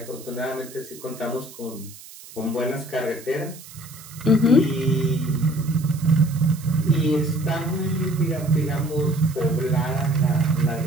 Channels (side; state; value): right; noise; hiss, 18 dB below the sound